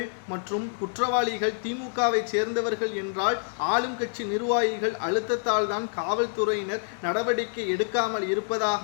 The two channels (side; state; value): right; silent; digital silence